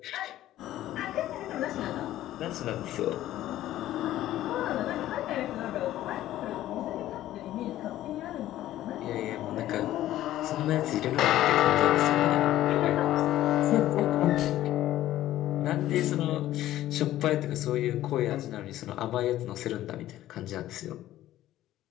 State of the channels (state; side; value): quieter; right; 13.9 dB